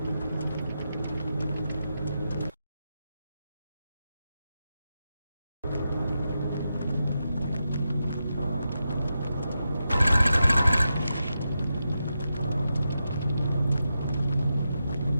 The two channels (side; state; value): both; inverted; correlation -0.88